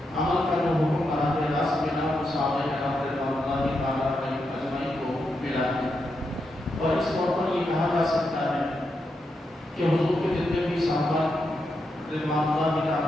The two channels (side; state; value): both; normal; correlation 0.84